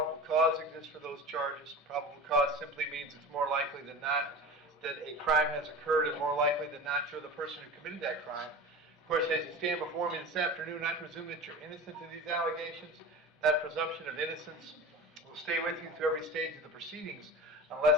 cause exists for those charges. Probable cause simply means it's more likely than not that a crime has occurred, and more likely than not you're the person who committed that crime. Of course, as you stand before me this afternoon, I presume that you're innocent of these allegations. That presumption of innocence will stay with you through every stage of the proceedings,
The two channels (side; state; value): both; normal; correlation 0.32